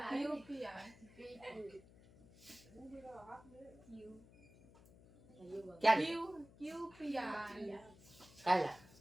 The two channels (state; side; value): noise; left; hum, 22 dB below the sound